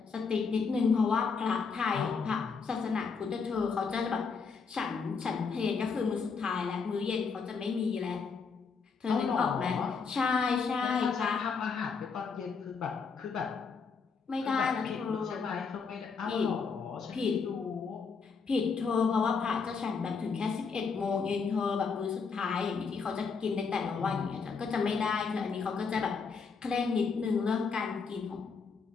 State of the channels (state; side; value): quieter; right; 5.3 dB